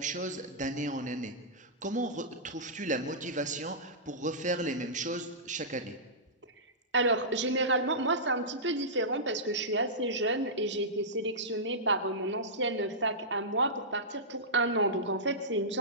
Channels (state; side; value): normal; both; correlation -0.16